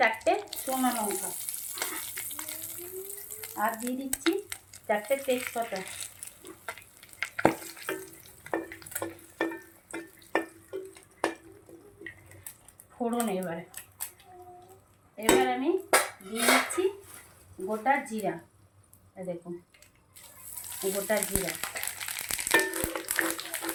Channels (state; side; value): identical; both; correlation 1.00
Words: শুকনো লঙ্কা, আর দিয়ে দিচ্ছি 4টে তেজপাতা, ফোড়ন। এবার আমি দিয়ে দিচ্ছি গোটা জিরা, দেখুন গোটা জিরা।